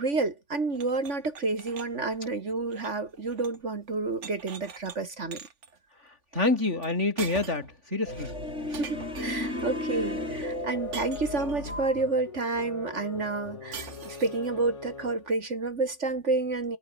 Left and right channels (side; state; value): left; late; 3.5 ms